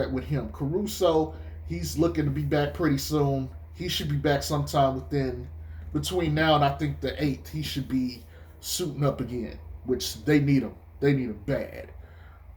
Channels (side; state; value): both; identical; correlation 1.00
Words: with him. Caruso, he's looking to be back pretty soon. He should be back sometime between now and I think the 8th. He should be suiting up again, which they need him. They need him bad.